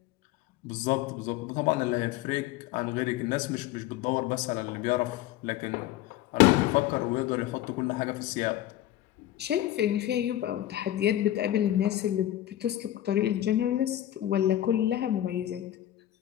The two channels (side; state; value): right; quieter; 13.4 dB